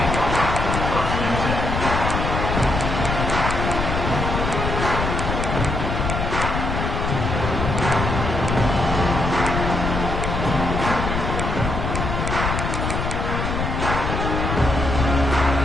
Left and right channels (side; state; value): left; noise; rumble, 2 dB below the sound